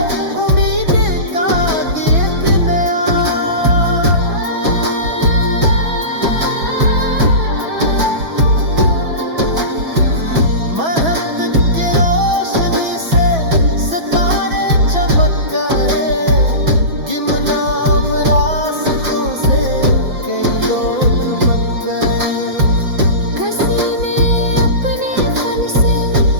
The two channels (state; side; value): late; left; 6.1 ms